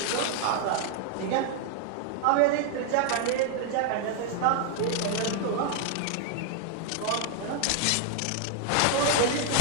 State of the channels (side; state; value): both; different; correlation 0.00